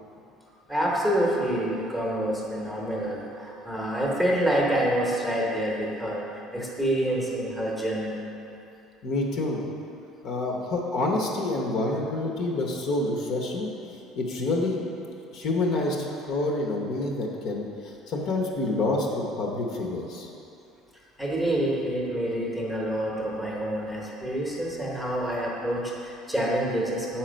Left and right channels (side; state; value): both; normal; correlation 0.60